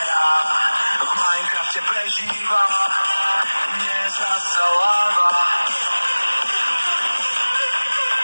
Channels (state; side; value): inverted; both; correlation -1.00